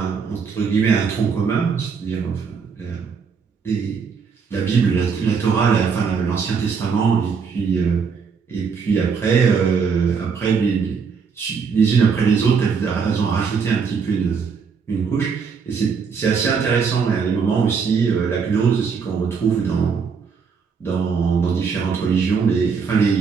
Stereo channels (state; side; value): quieter; left; 5.9 dB